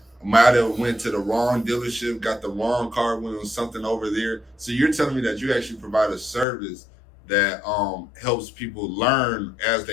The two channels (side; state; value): right; drops out; at 6.5 s